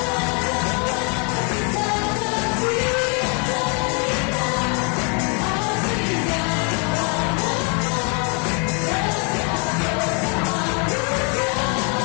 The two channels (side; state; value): right; quieter; 35.7 dB